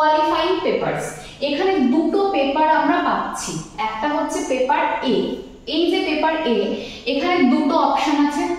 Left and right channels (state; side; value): identical; both; correlation 1.00